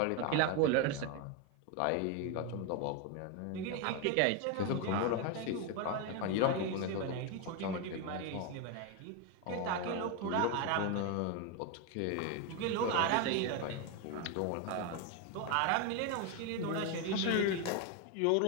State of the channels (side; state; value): both; different; correlation 0.02